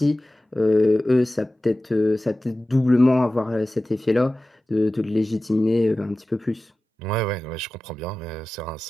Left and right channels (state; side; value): normal; both; correlation 0.96